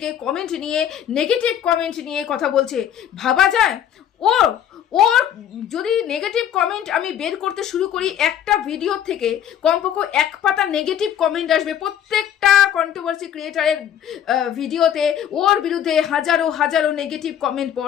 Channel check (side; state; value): right; quieter; 9.9 dB